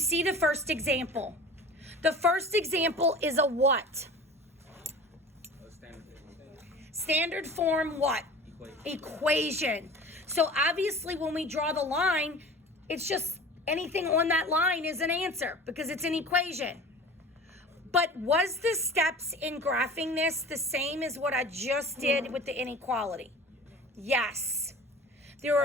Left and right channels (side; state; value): both; normal; correlation 0.39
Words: the first example. The first example is a what? Standard form what? Equation. So obviously when we draw the line, it's just anything on that line is an answer because it's an equation. But was the steps in graphing this the same as what I just did with the inequality? Yes. There